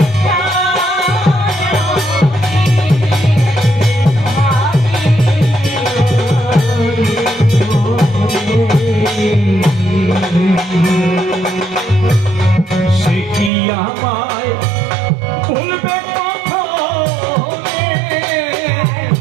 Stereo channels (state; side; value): drops out; left; at 13.5 s